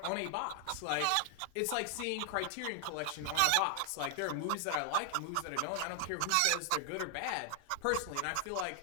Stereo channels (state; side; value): different; both; correlation 0.00